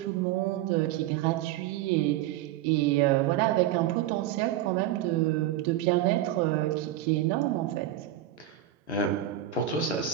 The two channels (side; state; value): left; quieter; 12.5 dB